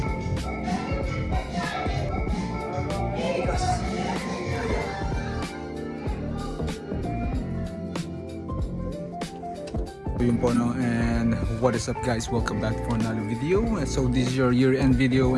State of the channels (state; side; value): identical; both; correlation 1.00